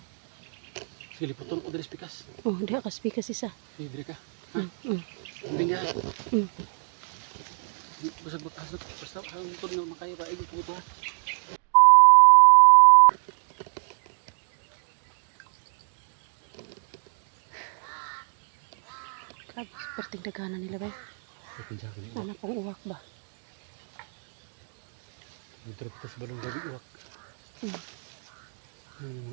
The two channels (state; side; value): silent; left; 58 dB below the other